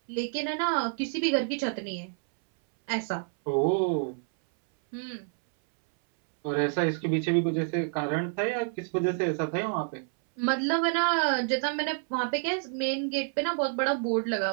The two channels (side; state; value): left; silent; 59 dB below the other